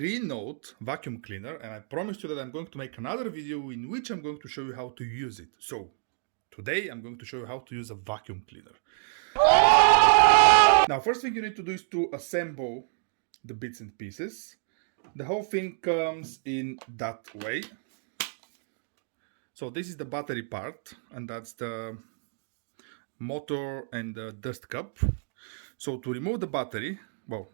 vacuum cleaner and I promised you that I'm going to make another video in which I'm going to show you how to use it. So today I'm going to show you how to use a vacuum cleaner. Now first thing you need to do is to assemble the bits and pieces. The whole thing comes in that way. So this is the battery part and that's the motor and the dust cup. So to remove the battery, well,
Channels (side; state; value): left; silent; 59 dB below the other